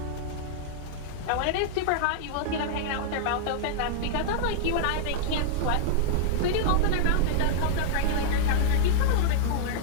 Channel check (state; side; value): different; both; correlation -0.01